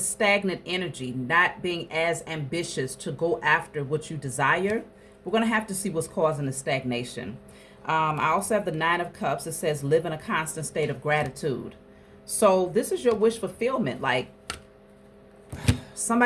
energy, not being as ambitious to go after what you desire. We're going to have to see what's causing the stagnation. I also have the Nine of Cups. It says live in a constant state of gratitude. So this is your wish fulfillment. Like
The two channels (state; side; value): identical; both; correlation 1.00